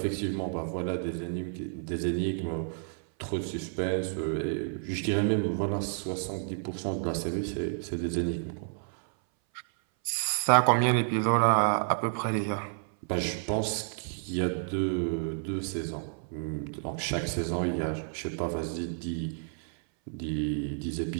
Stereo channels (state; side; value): silent; left; 58 dB below the other